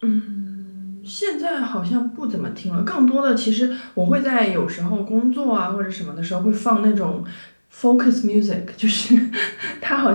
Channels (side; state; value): both; inverted; correlation -1.00